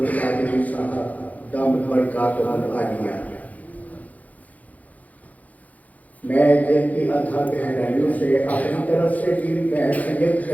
صاحب دامت برکاتہ العالیہ. میں دل کی ادھا گہرائیوں سے اپنی طرف سے بھی بحیثیت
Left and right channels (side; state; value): right; late; 0.075 ms